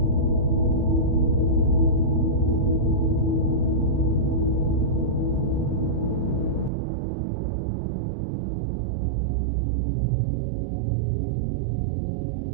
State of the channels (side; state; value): left; drops out; at 6.7 s